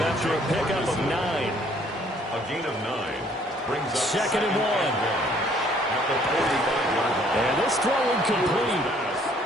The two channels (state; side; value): normal; both; correlation 0.61